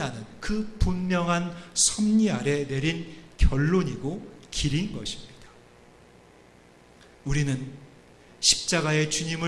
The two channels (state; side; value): identical; both; correlation 1.00